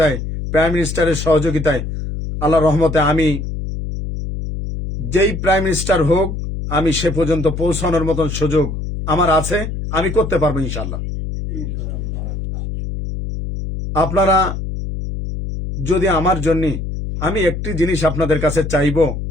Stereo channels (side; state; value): left; noise; hum, 5 dB below the sound